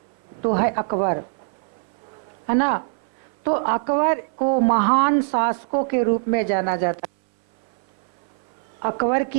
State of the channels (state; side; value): silent; left; 60 dB below the other